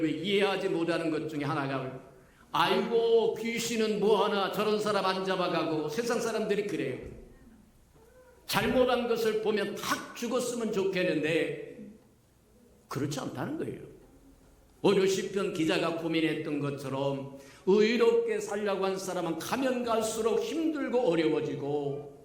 이해하지 못하는 것 중에 하나가, 아이고 귀신은 뭐하나 저런 사람 안 잡아가고, 세상 사람들이 그래요. 잘못한 것을 보면 탁 죽었으면 좋겠는데 그렇지 않다는 거예요. 오늘 시편 기자가 고민했던 것처럼 의롭게 살려고 한 사람은 가면 갈수록 힘들고 어려워지고,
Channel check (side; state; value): both; identical; correlation 1.00